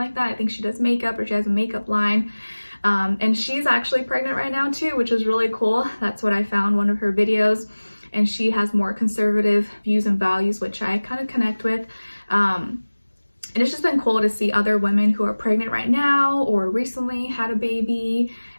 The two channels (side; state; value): both; inverted; correlation -1.00